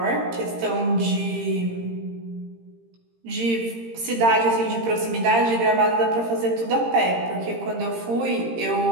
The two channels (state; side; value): late; left; 18 ms